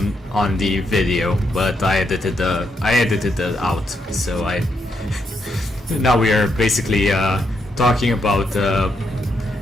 the video, but I edited it out, so now we are basically talking about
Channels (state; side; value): normal; both; correlation 0.79